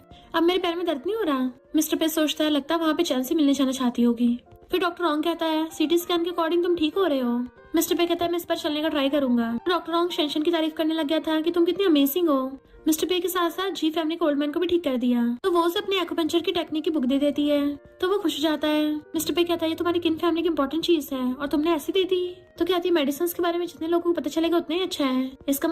अब मेरे पैर में दर्द नहीं हो रहा। मिस्टर पे सोचता है लगता है वहाँ पे चैन से मिलने जाना चाहती होगी। फिर डॉक्टर रॉन्ग कहता है सीटी स्कैन के अकॉर्डिंग तुम ठीक हो रहे हो। मिस्टर पे कहता है मैं इस पर चलने का ट्राई करूंगा। डॉक्टर रॉन्ग शेंशन की तारीफ करने लग गया था कि तुम कितनी अमेजिंग हो। मिस्टर पे के साथ साथ जी फैमिली को ओल्ड मैन को भी ठीक कर दिया। तो वो उसे अपनी एक्यूपंक्चर की टेक्निक की बुक दे देती है तो वो खुश हो जाता है। मिस्टर पे कहता है ये तुम्हारी किन फैमिली की इंपॉर्टेंट चीज है और तुमने ऐसी दे दी। तो कहती है मेडिसिन के बारे में जितने लोगों को पता चलेगा उतना ही अच्छा है, इसका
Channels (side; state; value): both; identical; correlation 1.00